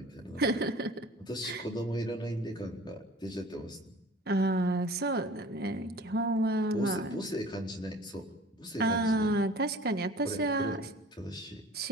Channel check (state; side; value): normal; both; correlation 0.45